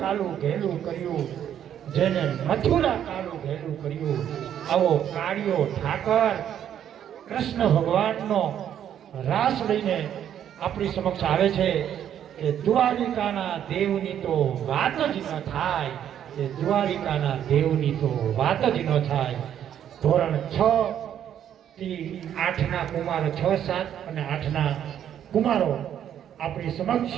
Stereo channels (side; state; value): left; quieter; 9.9 dB